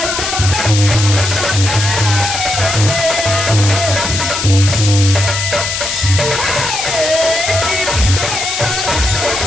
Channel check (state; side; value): noise; left; hiss, 3 dB below the sound